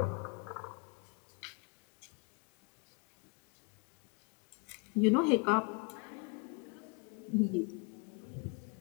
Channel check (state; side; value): quieter; right; 30.4 dB